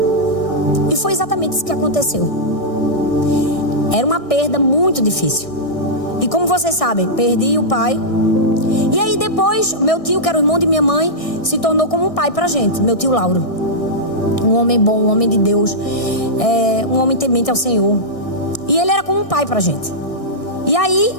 E foi exatamente isso que aconteceu. Era uma perda muito difícil. E como vocês sabem, perdi o pai. E aí depois, meu tio, que era o irmão de minha mãe, se tornou como um pai pra gente. Meu tio Lauro. Um homem bom, um homem de Deus. Um homem temente ao Senhor. E ele era como um pai pra gente. E aí,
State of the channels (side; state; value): right; late; 1.6 ms